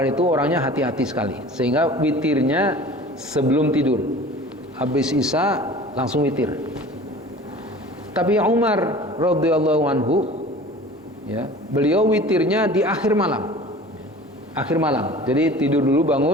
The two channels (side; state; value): both; normal; correlation 0.42